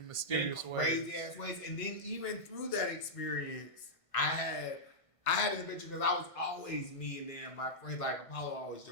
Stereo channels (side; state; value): right; late; 1.5 ms